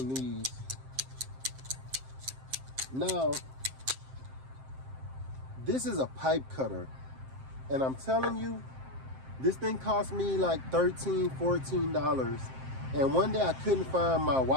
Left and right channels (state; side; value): late; left; 7.6 ms